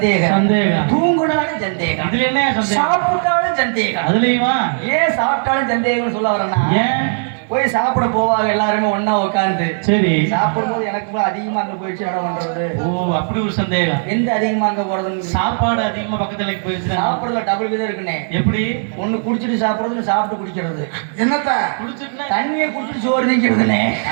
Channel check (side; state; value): left; silent; 62 dB below the other